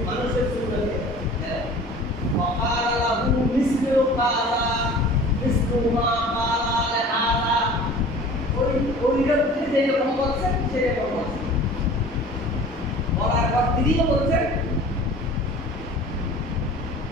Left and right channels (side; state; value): both; normal; correlation 0.43